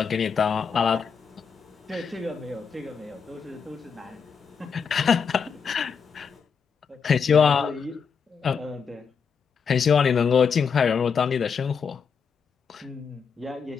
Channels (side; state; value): right; quieter; 6.2 dB